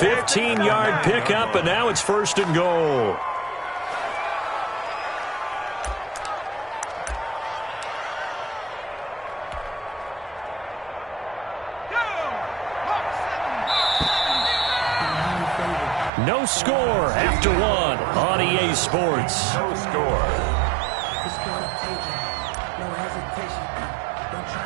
pickup, and now it's 1st and goal. No score after 1 on EA Sports. No score.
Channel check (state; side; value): drops out; left; at 16.1 s